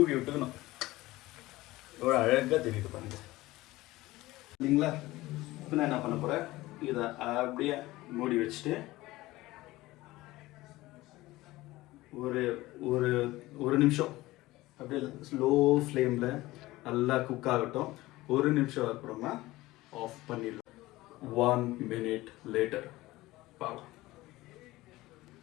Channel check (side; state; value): right; quieter; 18.5 dB